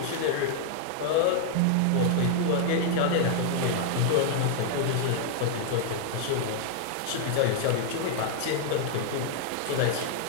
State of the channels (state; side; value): different; both; correlation -0.01